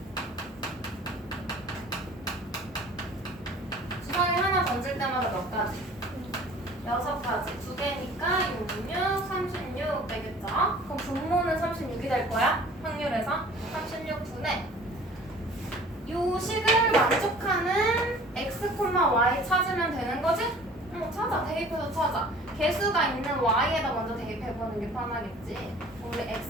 주사위 하나 던질 때마다 몇 가지? 6가지. 두 개니까 6, 6, 36 되겠죠? 그럼 분모는 36이 될 거야? 확률에서 36분의 요 식을 만족하는 x, y 찾으면 되는 거지? 찾아. 대입해서 찾아. 개수가 있는 y에다 먼저 대입해보는 게 편하겠지. 우리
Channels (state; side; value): normal; both; correlation 0.48